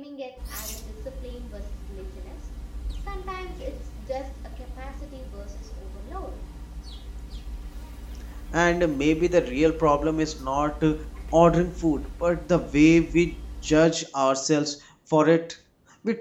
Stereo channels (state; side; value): identical; both; correlation 1.00